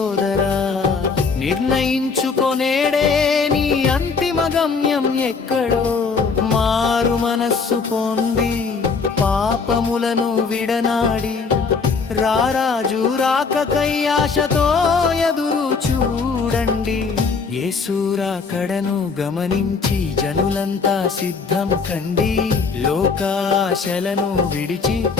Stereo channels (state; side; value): quieter; right; 5.0 dB